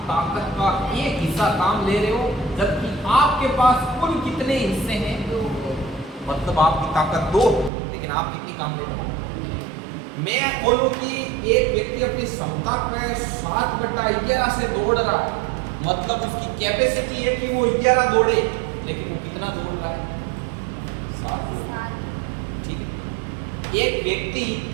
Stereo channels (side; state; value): left; drops out; at 7.7 s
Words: ताकत का एक हिस्सा काम ले रहे हो, जबकि आपके पास कुल कितने हिस्से हैं, मतलब आपकी ताकत 2 लेकिन आप कितनी काम ले रहे हो। मैं बोलूं कि एक व्यक्ति अपनी क्षमता पे 7/11 से दौड़ रहा है, मतलब उसकी कैपेसिटी है कि वो 11 दौड़े, लेकिन वो कितना दौड़ रहा है 7। ठीक है। एक व्यक्ति